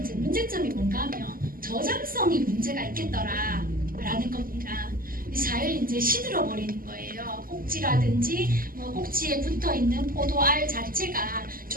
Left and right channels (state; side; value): late; left; 0.42 ms